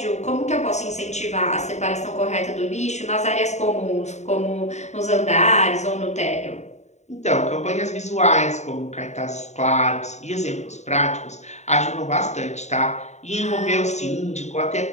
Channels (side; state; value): right; late; 0.33 ms